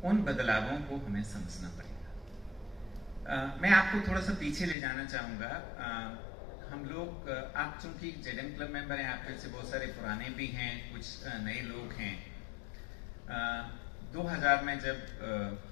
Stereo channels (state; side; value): drops out; right; at 4.8 s